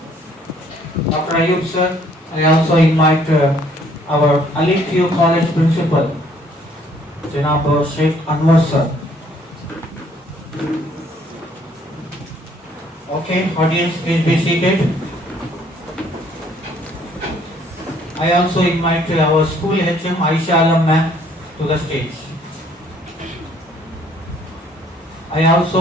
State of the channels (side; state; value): both; normal; correlation 0.62